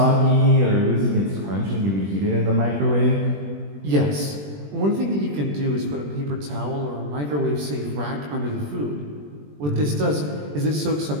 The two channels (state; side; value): late; left; 20 ms